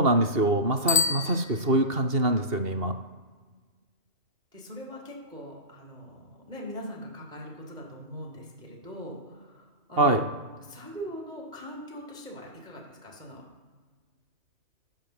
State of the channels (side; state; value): left; late; 2.7 ms